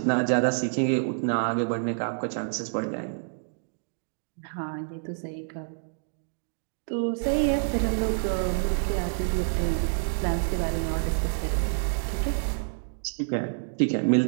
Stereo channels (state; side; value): silent; left; digital silence